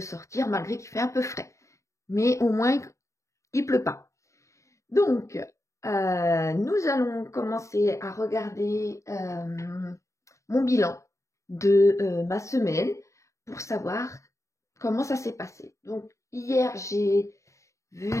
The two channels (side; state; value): right; late; 0.15 ms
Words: sortir malgré qu'il fait un peu frais. Mais au moins, il pleut pas. Donc, nous allons commencer à regarder mon bilan de ma semaine pour savoir comment ça s'est passé. Donc, hier, j'ai vu